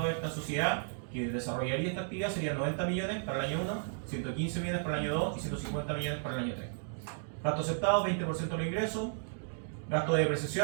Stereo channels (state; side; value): silent; left; digital silence